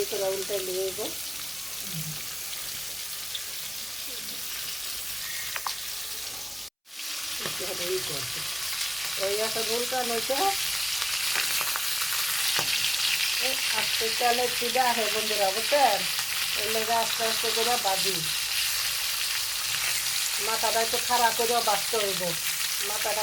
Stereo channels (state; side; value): identical; both; correlation 1.00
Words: উল্টে নিয়ে দেবো। ওই একটা উল্টা নইছে আস্তে তেলের চিড়া আছে বন্ধুরা, বুঝছেন। এর লেগে আস্তে আস্তে করে বাজি মাথাটা একটু খাড়া করে বাঁচতে হইব।